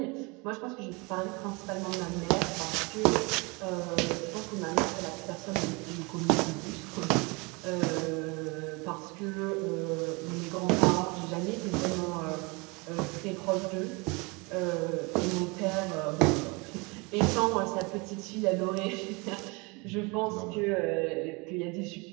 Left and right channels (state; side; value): quieter; left; 28.0 dB